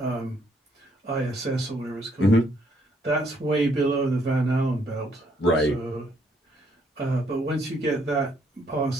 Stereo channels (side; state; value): both; normal; correlation 0.69